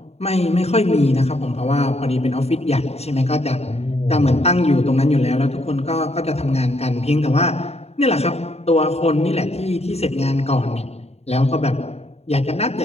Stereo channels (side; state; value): right; late; 0.30 ms